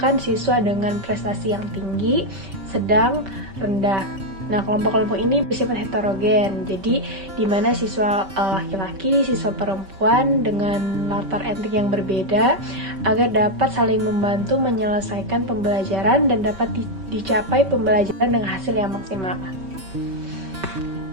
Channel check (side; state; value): left; late; 5.2 ms